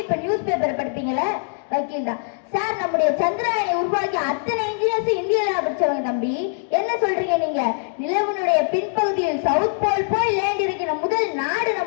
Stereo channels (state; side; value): silent; right; digital silence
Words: இப்ப நியூஸ் பேப்பர் படிப்பீங்களா? வக்கீல் தான் சார். நம்முடைய சந்திராயனை உருவாக்கி அத்தனை இன்ஜினியர்ஸ் இந்தியாவில படிச்சவங்க தம்பி. என்ன சொல்றீங்க நீங்க? நிலவனுடைய பின்பகுதியில் சவுத் போல் போய் லேண்ட் இருக்கிற முதல் நாடு